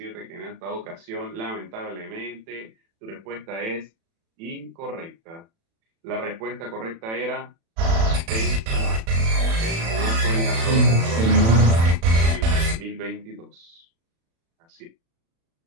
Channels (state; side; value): late; left; 36 ms